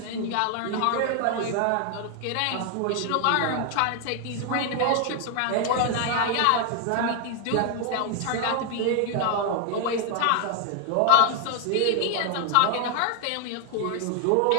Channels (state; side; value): different; both; correlation 0.00